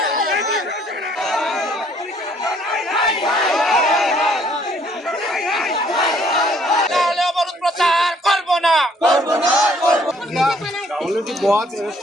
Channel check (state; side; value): normal; both; correlation 0.63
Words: 50 প্রচার করব না, করব না, করব না। অলরেডি बहुत